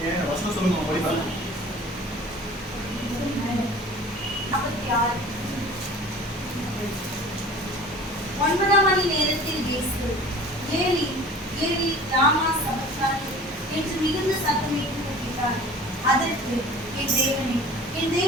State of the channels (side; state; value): both; normal; correlation 0.43